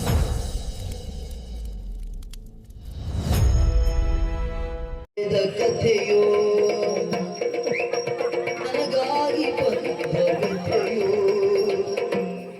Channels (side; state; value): both; identical; correlation 1.00